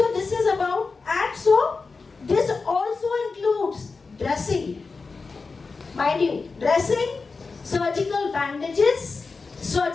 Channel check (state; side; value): quieter; right; 4.3 dB